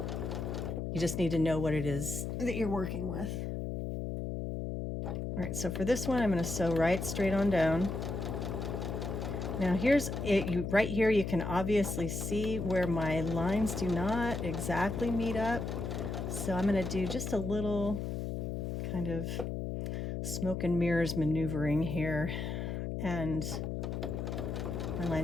You just need to know what it is that you're working with. All right, so for this one, I'm going to sew right straight on down. Now here's it. Right here, you can obviously see where my lines do not exactly meet up. So I'm going to do just a little kind of smoke and mirrors maneuvering here, and my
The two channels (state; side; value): noise; left; hum, 3 dB below the sound